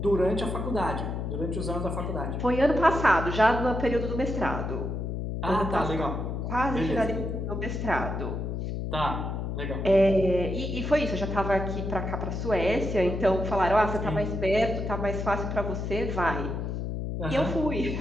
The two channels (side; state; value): left; noise; hum, 3 dB below the sound